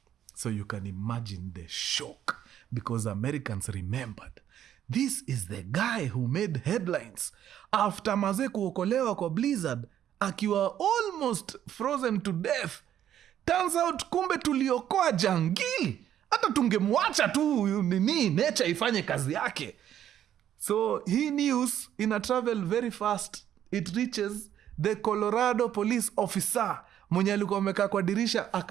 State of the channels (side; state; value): left; quieter; 10.7 dB